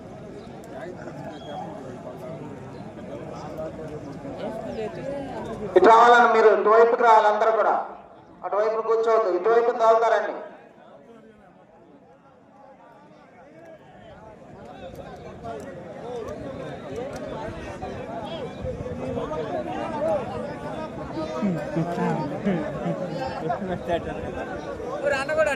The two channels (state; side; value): identical; both; correlation 1.00